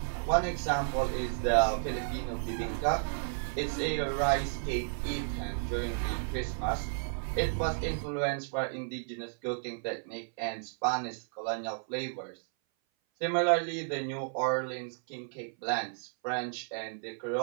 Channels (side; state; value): left; silent; 56 dB below the other